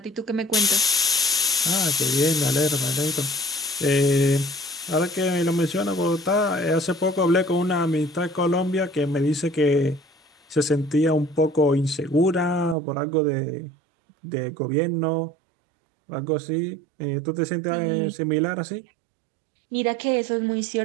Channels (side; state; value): left; drops out; at 12.8 s